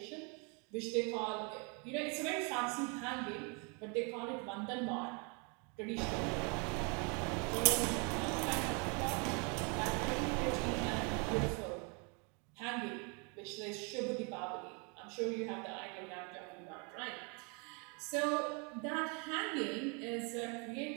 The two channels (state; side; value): quieter; left; 34.2 dB